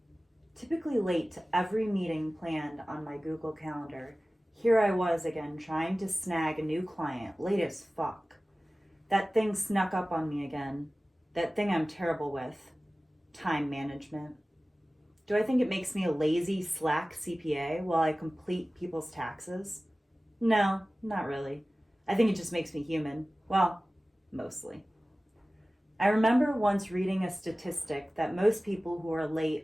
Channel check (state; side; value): normal; both; correlation 0.97